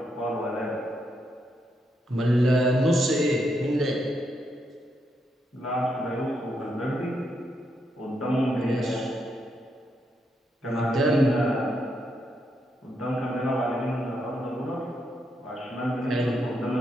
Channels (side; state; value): both; normal; correlation 0.80